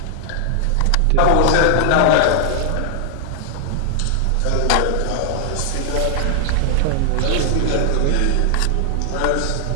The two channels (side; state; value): both; different; correlation 0.00